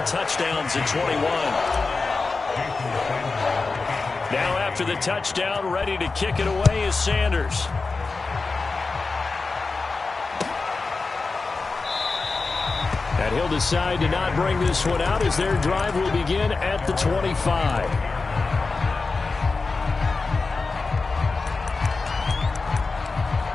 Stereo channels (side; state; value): right; quieter; 4.0 dB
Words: touchdowns in 21. Now after the touchdown, ready to kick it away is Sanders. And he'll decide to not bring this one out as their drive will begin at the 25.